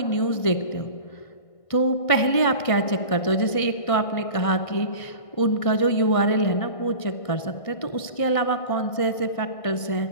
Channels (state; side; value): late; right; 1.6 ms